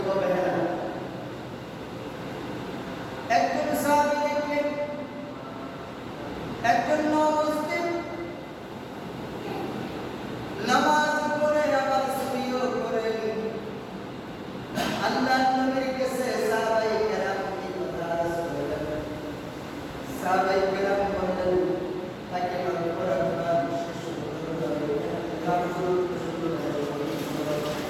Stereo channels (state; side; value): identical; both; correlation 1.00